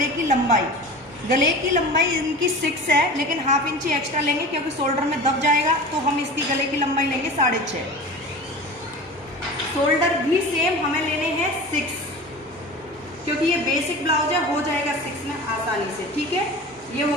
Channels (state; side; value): normal; both; correlation 0.35